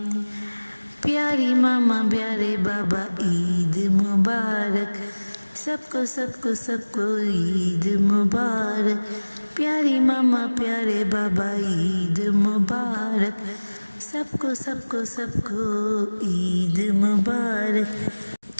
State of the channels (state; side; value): inverted; both; correlation -1.00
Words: प्यारी मामा प्यारे बाबा ईद मुबारक, सबको सबको सबको ईद मुबारक। प्यारी मामा प्यारे बाबा ईद मुबारक, सबको सबको सबको ईद मुबारक।